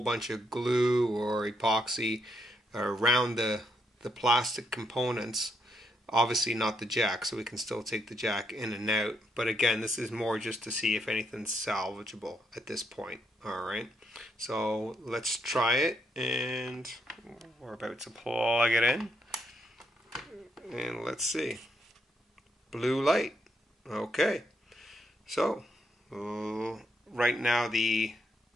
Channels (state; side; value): normal; both; correlation 0.77